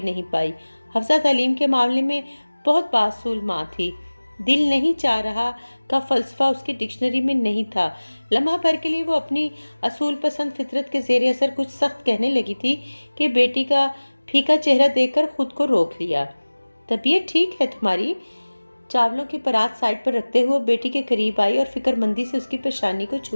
نہیں پائی۔ حفصہ تعلیم کے معاملے میں بہت باصول ماں تھی، دل نہیں چاہ رہا کا فلسفہ اس کی ڈکشنری میں نہیں تھا۔ لمحہ بھر کے لیے وہ اپنی اصول پسند فطرت کے زیر اثر کچھ سخت کہنے لگی تھی کہ بیٹی کا پھیکا چہرہ دیکھ کر خود کو روک لیا۔ طبیعت ٹھیک ہے تمہاری؟ چاولوں کی پرات سائڈ پر رکھتے ہوئے بیٹی کے قریب آئی اور فکر مندی سے اس کی پیشانی کو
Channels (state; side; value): inverted; both; correlation -1.00